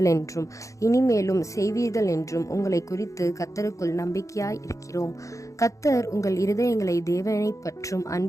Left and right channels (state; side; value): late; right; 0.15 ms